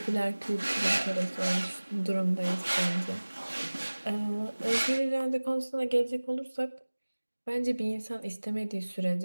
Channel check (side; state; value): both; inverted; correlation -1.00